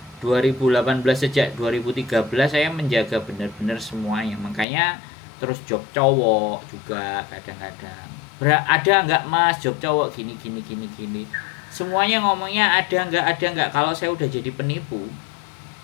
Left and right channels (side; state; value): right; drops out; at 4.7 s